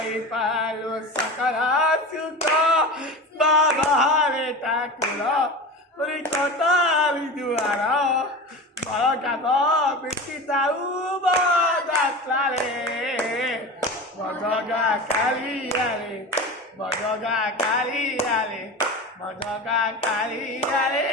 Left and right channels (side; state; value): both; normal; correlation 0.30